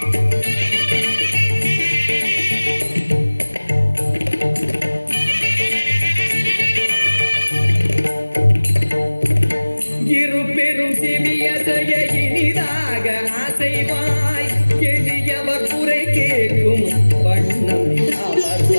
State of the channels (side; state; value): both; inverted; correlation -1.00